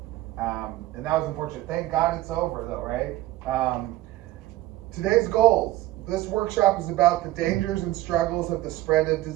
And that was unfortunate. Thank God it's over though, right? Today's goals. This workshop is about the dangers and struggles of the spread of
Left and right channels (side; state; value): left; quieter; 16.4 dB